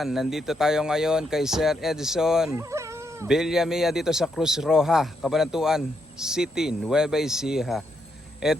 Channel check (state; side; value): normal; both; correlation 0.79